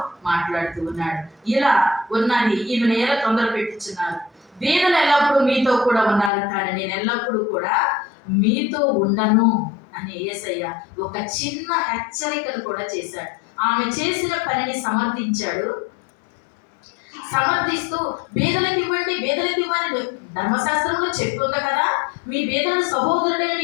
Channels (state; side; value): drops out; right; at 6.3 s